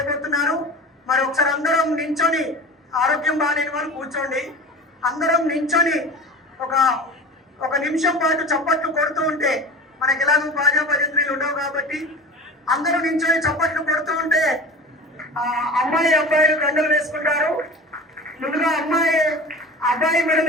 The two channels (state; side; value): normal; both; correlation 0.35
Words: మరి ఒకసారి అందరం నించొని, ఆరోగ్యం బాగాలేని వాళ్ళు కూర్చోండి, అందరం నించొని ఒక నిమిషం పాటు చప్పట్లు కొడుతూ ఉంటే, మనకి ఎలాగో బాజా భజంత్రీలు ఉండవు కాబట్టి అందరూ నించొని చప్పట్లు కొడుతూ ఉంటే అమ్మాయి అబ్బాయిలు దండలు వేసుకుంటారు. ముందుగా అబ్బాయి